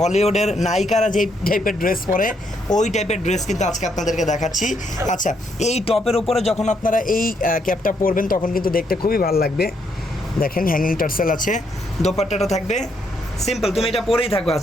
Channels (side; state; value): both; normal; correlation 0.75